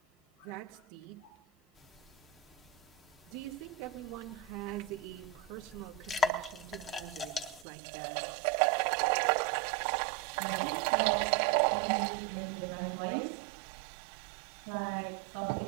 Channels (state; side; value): drops out; left; at 7.7 s